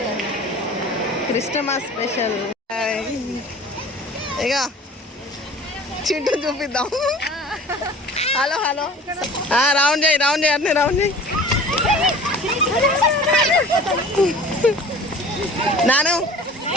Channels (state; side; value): normal; both; correlation 0.43